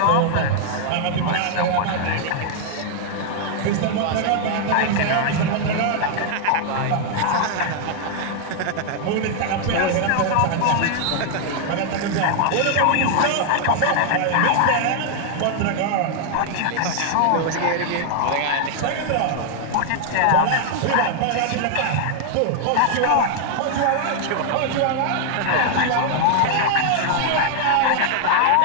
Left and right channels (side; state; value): both; different; correlation 0.00